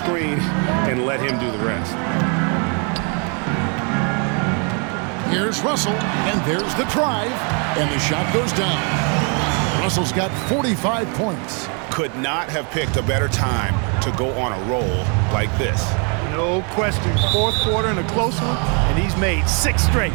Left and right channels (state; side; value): quieter; left; 36.7 dB